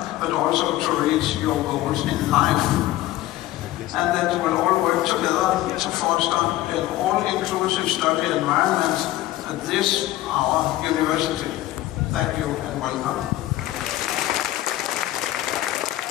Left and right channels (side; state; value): right; quieter; 15.3 dB